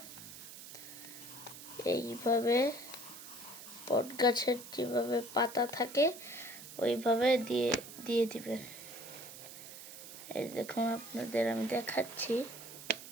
এইভাবে বট গাছের যেভাবে পাতা থাকে ওইভাবে দিয়ে দিবেন। এই দেখুন আপনাদের আমি দেখাচ্ছি।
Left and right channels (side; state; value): right; noise; hiss, 14 dB below the sound